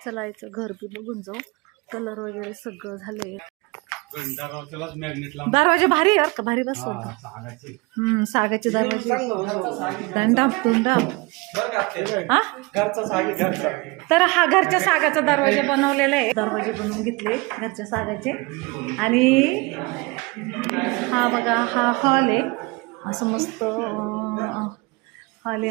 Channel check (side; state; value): left; quieter; 25.6 dB